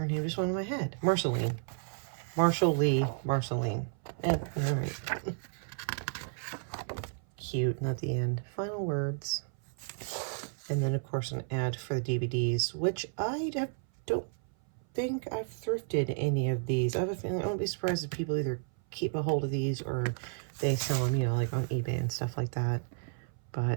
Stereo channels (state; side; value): silent; left; 56 dB below the other